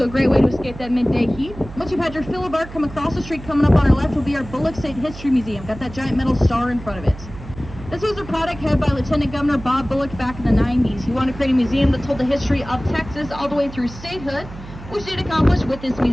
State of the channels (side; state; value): right; noise; hum, 15 dB below the sound